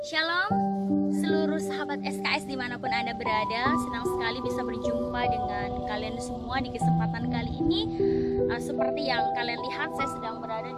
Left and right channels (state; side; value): identical; both; correlation 1.00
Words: Shalom seluruh sahabat SKS dimanapun Anda berada. Senang sekali bisa berjumpa dengan kalian semua di kesempatan kali ini. Seperti yang kalian lihat, saya sedang berada